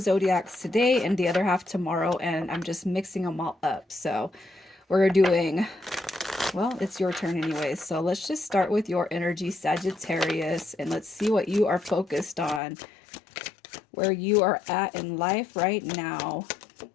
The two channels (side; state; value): right; drops out; at 12.6 s